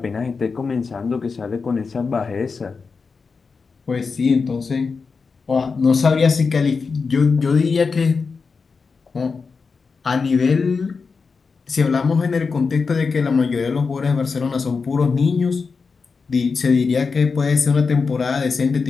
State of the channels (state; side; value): quieter; right; 4.9 dB